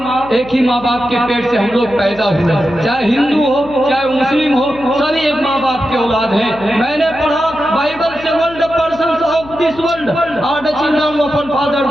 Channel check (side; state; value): left; noise; hum, 17 dB below the sound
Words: ही माँ बाप के पेट से हम लोग पैदा हुए। चाहे हिंदू हो, चाहे मुस्लिम हो, सभी एक माँ बाप के औलाद हैं। मैंने पढ़ा बाइबल से, world persons of this world are the children of one father